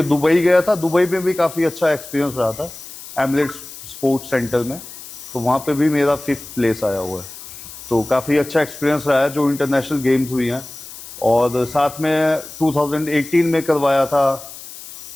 दुबई गया था, दुबई में भी काफ़ी अच्छा एक्सपीरियंस रहा था एमिरेट्स स्पोर्ट्स सेंटर में, तो वहाँ पे भी मेरा 5th प्लेस आया हुआ है। तो काफ़ी अच्छा एक्सपीरियंस रहा है जो इंटरनेशनल गेम्स हुई हैं। और साथ में 2018 में करवाया था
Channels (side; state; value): left; noise; hiss, 14 dB below the sound